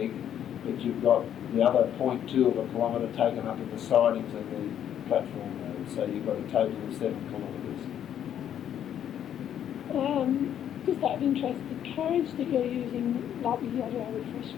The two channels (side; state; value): right; quieter; 9.9 dB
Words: but you've got the other 0.2 of a kilometre taken up in the sidings and the platform road, so you've got a total of 7 kilometres. Just out of interest, the carriage that you're using, like with the other